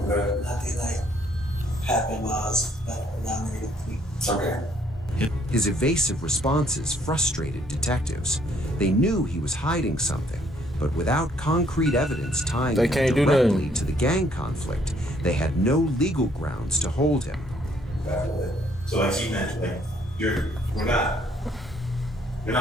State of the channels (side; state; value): both; normal; correlation 0.65